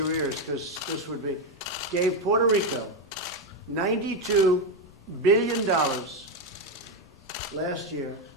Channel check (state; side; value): normal; both; correlation 0.08